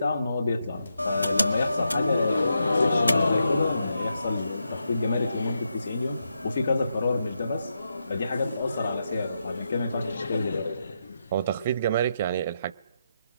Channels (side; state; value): both; inverted; correlation -0.83